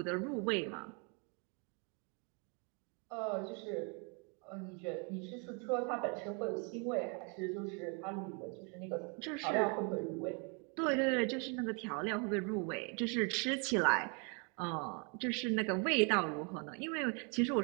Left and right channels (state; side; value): quieter; left; 35.5 dB